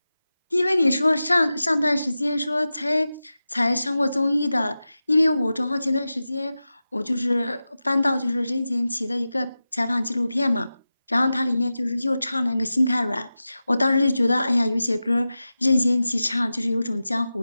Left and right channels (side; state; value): both; inverted; correlation -0.94